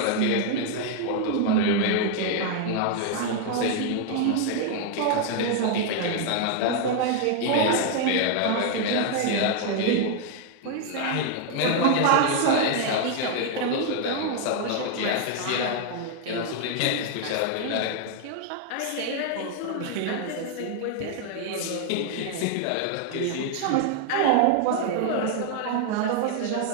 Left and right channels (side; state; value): both; different; correlation 0.00